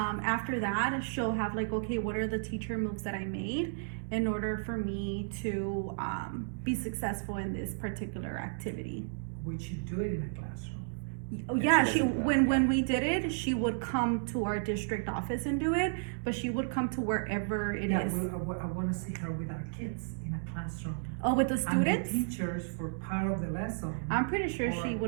that, she'll have like, okay, what are the teacher moves that I made in order for me to be successful in this particular activity? Would you do it in a classroom? Oh, Yeah, yeah, she she doesn't do that, when we did it, she would come to our district office and do it, but she would come to wherever it is. I want to see her with our kids in a classroom. Oh, with the And students? the teachers for part of the lesson. I'm pretty sure she or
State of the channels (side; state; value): left; silent; digital silence